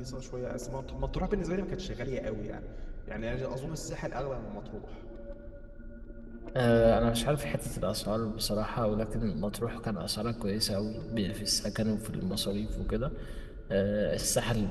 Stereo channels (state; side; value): identical; both; correlation 1.00